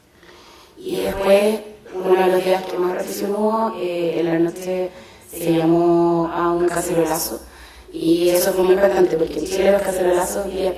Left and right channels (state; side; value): identical; both; correlation 1.00